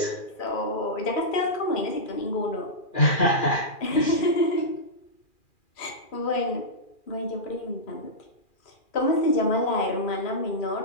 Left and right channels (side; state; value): right; late; 2.4 ms